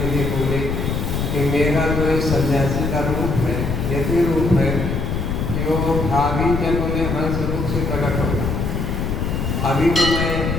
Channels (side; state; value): left; noise; rumble, 1 dB below the sound